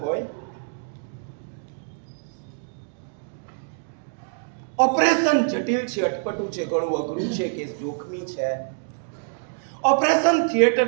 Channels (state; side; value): silent; left; digital silence